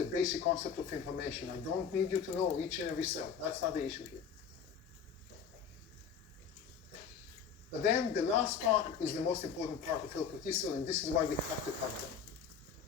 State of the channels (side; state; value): right; quieter; 6.9 dB